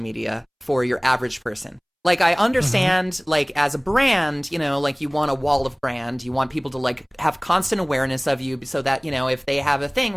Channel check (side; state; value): both; identical; correlation 1.00